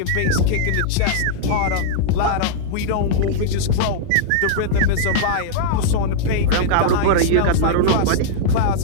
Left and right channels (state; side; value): different; both; correlation -0.02